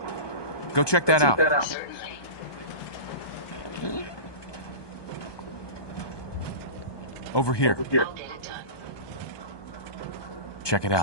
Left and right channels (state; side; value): late; right; 1.2 ms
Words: Go check that out. Certainly. Over here. I'll get it done. Check it out.